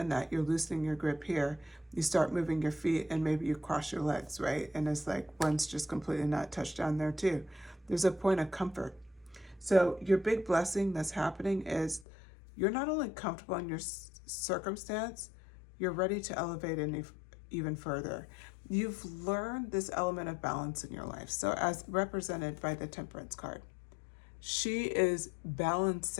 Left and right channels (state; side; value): drops out; right; at 12.1 s